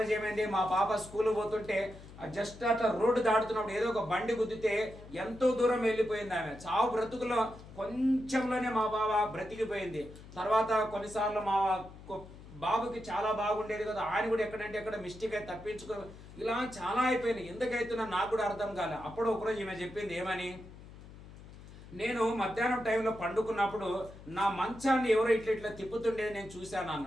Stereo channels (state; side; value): noise; left; hum, 17 dB below the sound